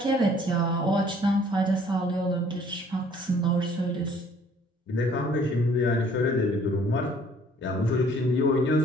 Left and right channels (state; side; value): normal; both; correlation 0.58